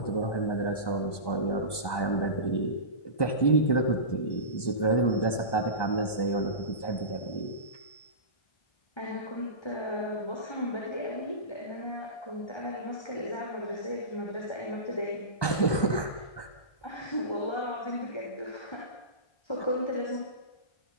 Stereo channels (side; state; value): right; late; 1.2 ms